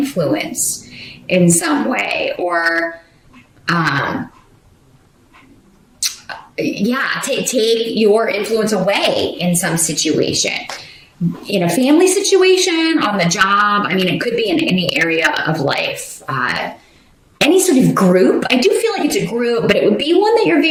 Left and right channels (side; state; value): both; identical; correlation 1.00